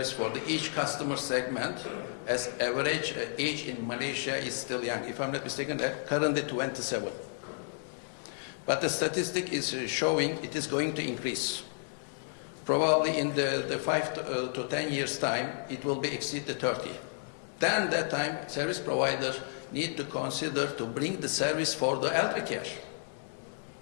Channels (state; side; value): silent; right; digital silence